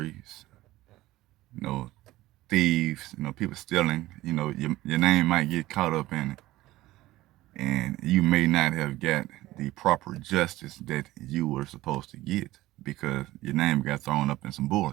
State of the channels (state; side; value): quieter; left; 17.0 dB